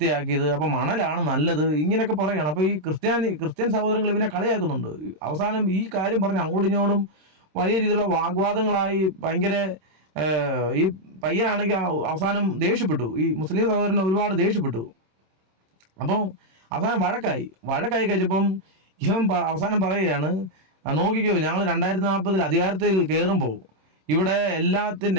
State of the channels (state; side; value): late; left; 26 ms